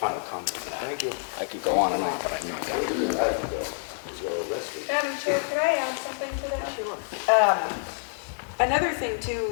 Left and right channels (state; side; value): silent; right; digital silence